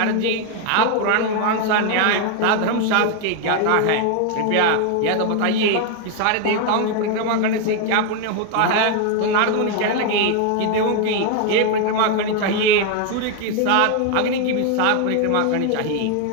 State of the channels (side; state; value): both; different; correlation 0.01